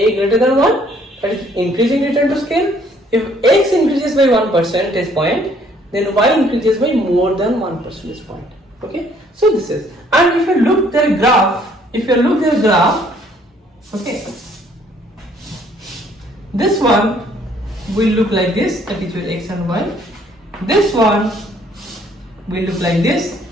than 1? That is increasing return to scale. If x increases by 1 percentage point, then y increases by more than 1 percentage point. Okay, so this is, and if you look their graph, okay, this one will look like this, that is your x and y. This one will look like this,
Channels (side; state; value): both; normal; correlation 0.62